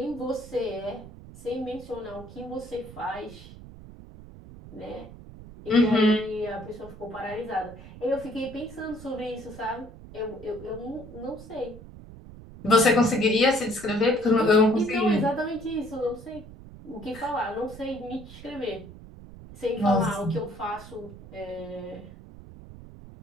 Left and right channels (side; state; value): right; noise; rumble, 16 dB below the sound